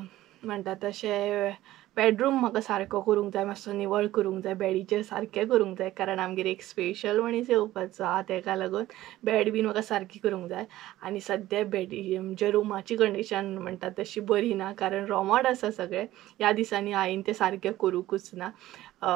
म्हणटा तशें बेडरूम म्हाका सारको करूंक जाय. मातसो निवळ करूंक जाय. बेडीचेर सारकें करूंक जाय. कारण आमगेर एक स्पेशल मनीस येवपाचो आहा. तेका लागून बेड बीन म्हाका सारकी करूंक जाय. आनी सद्या बेडी म्हणजे रुमाची कंडीशन म्हणटा तशी बरी ना. कारण रोमोट आसा सगळें. ह्या दिसांनी हांवें तें सारकें करूंकूच ना.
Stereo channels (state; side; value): quieter; left; 15.3 dB